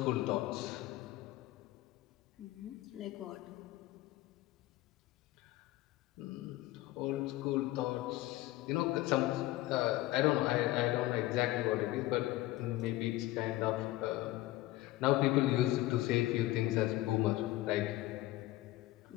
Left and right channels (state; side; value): quieter; right; 16.9 dB